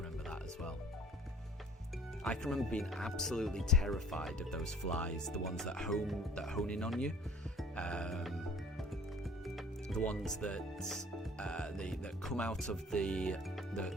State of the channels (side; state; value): both; normal; correlation 0.51